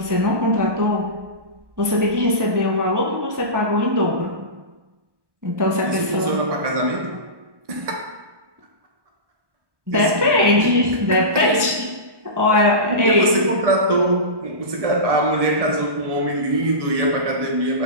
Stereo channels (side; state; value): left; late; 1.1 ms